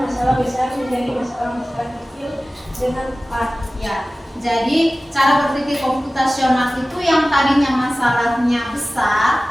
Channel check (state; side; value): normal; both; correlation 0.97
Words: masalah besar menjadi masalah-masalah kecil dengan cepat. ya. Jadi cara berpikir komputasional itu yang tadinya masalahnya